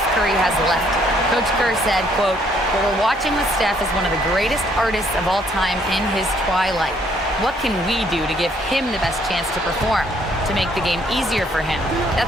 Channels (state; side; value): normal; both; correlation 0.66